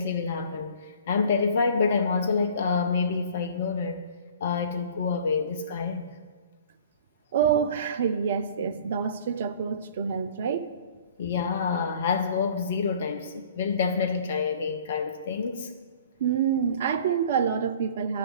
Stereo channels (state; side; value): inverted; both; correlation -0.49